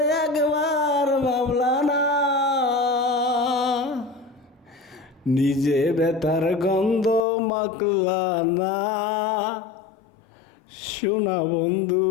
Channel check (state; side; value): drops out; right; at 7.2 s